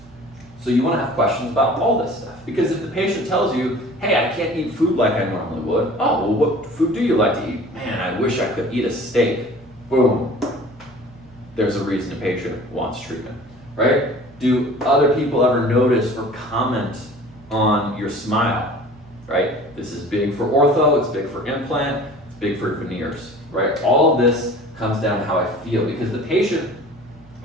So you want to have questions about all this stuff. Because if the patient tells you, hey, I can't eat food like I normally would. Oh, well, what food do you like to eat? Man, I wish I could eat a steak. Boom. There's a reason the patient wants treatment, right? Do other people ever notice or comment on your smile, right? This is big for ortho, it's big for implant, it's big for veneers, right? All of this comes down to how I feel because the patient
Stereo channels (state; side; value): normal; both; correlation 0.45